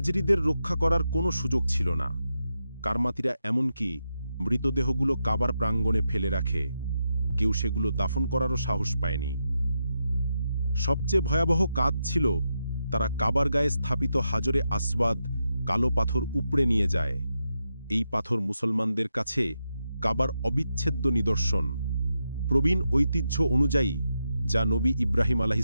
রক্ষা করার কোনো সুযোগ ছিল না। কারমাতিরা এমনকি মৃতদেহগুলো কাবার প্রাঙ্গণে ফেলে রাখে, কেউ সেগুলো দাফন করারও সাহস পায়নি। সবচেয়ে ভয়াবহ কাজ ছিল তারা কাবার গায়ে স্থাপিত হাজরে আসওয়াদ কালো পাথর উপড়ে নিয়ে যায়। এই পাথর মুসলমানদের কাছে কাবার অবিচ্ছেদ্য নিদর্শন। প্রবীণ ঐতিহ্য অনুযায়ী যা নবী ইব্রাহিম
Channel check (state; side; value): inverted; both; correlation -0.86